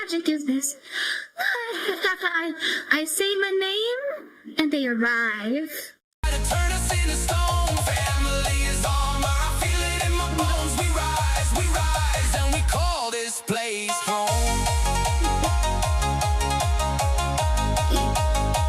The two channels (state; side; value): identical; both; correlation 1.00